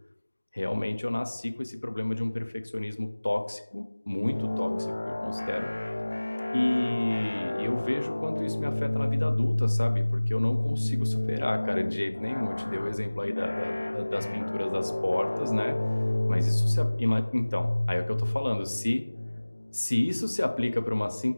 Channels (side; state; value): both; inverted; correlation -1.00